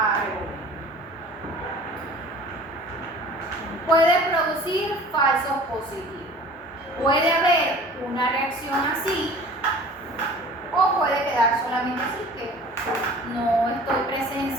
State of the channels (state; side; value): normal; both; correlation 0.45